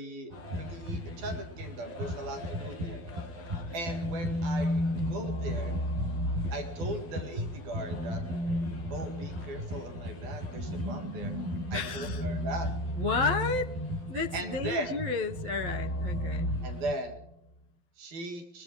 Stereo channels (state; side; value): late; left; 12 ms